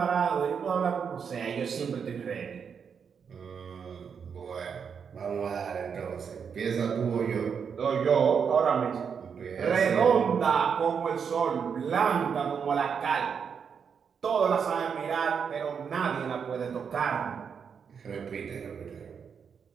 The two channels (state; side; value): quieter; left; 6.7 dB